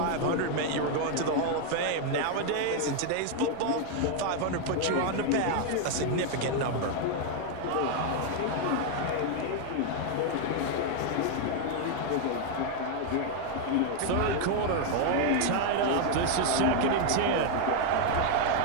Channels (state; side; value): different; both; correlation 0.00